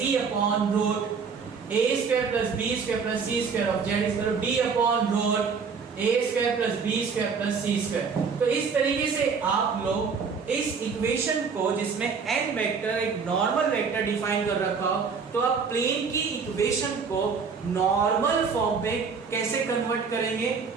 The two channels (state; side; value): quieter; left; 5.6 dB